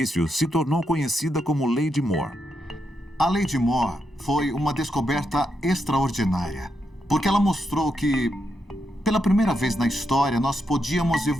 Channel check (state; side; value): normal; both; correlation 0.83